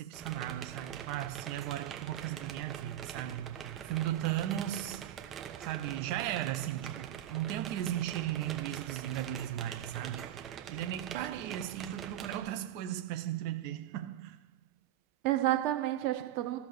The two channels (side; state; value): left; quieter; 12.4 dB